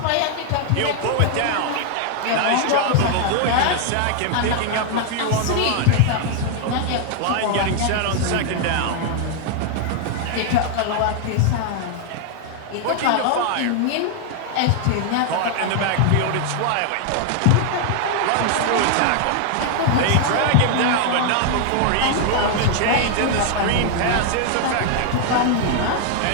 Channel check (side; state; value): both; different; correlation 0.00